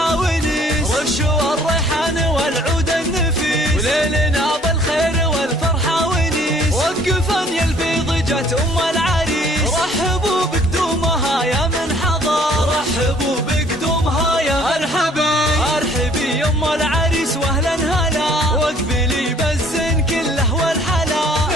ونيس. رشوا الريحان والعود النفيس، وليلنا بالخير والفرحة ونيس. وقفا يا البيض جت العريس، رحبوا بقدومها يا من حضر، رحبوا بقدومها يا مرحبا. ارحبي يا العريس واهلا هلا، واقبلي بالزين كله والحلا.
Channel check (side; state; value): both; normal; correlation 0.57